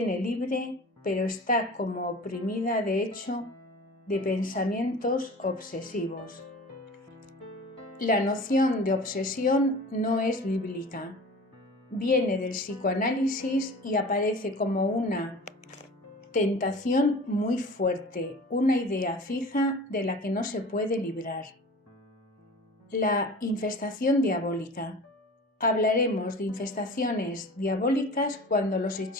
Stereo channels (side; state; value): both; normal; correlation 0.39